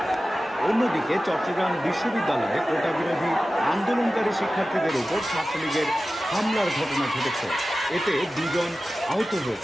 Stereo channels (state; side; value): normal; both; correlation 0.95